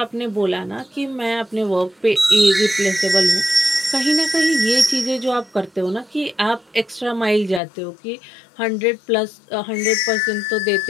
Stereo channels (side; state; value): right; drops out; at 7.6 s